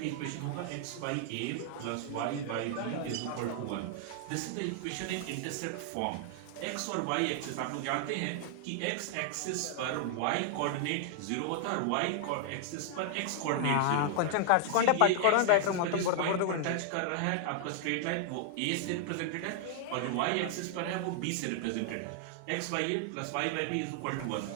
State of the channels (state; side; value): different; both; correlation 0.00